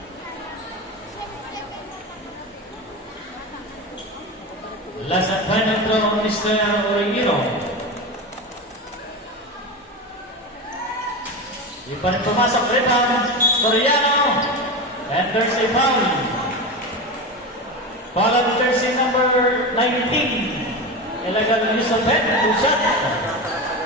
Last and final throw on Mr. Origino. Di pa rin pumasok. Rebound. Soriano. And there's a foul. Foul on jersey number 19. Illegal use of head. Two shot.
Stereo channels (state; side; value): normal; both; correlation 0.22